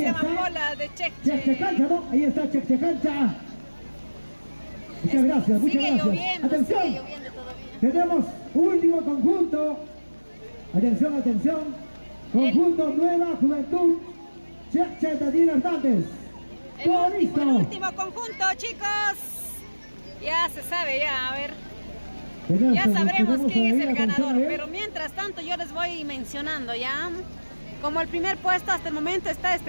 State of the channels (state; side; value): inverted; both; correlation -1.00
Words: llama está. Pola de Cheche Cheche. Cancha, ¿no? Ahí está Cheche Cancha. Muchas gracias, muchas Sigue gracias. lloviendo Atención, todavía. tenemos último conjunto. Atención. Conjunto Nueva Juventud. Cheche Daniel Hernández. Todo El listo. último conjunto, chicos. Ya se sabe, a ver. Ya sabremos quién es el ganador, pero mientras tanto yo les voy mencionando ya. Como el primer puesto hasta el momento está